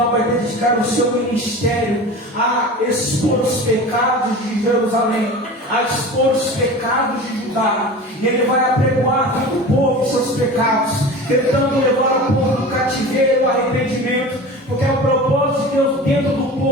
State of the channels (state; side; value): normal; both; correlation 0.34